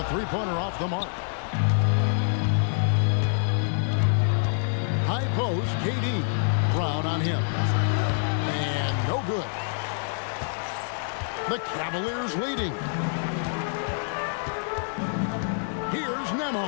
three-pointer off the mark. High post, KD. Brown on him. And no good. The Cavaliers leading. Here's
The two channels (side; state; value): right; silent; digital silence